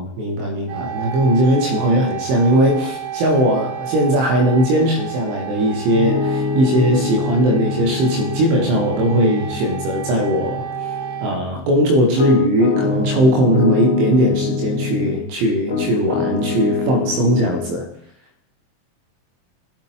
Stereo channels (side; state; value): left; late; 23 ms